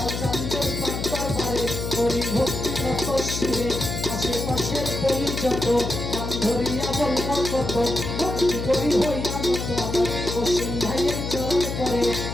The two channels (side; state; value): left; noise; hum, 4 dB below the sound